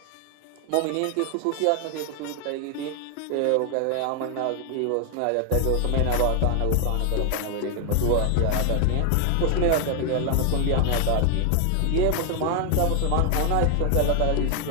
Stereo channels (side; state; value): both; different; correlation 0.00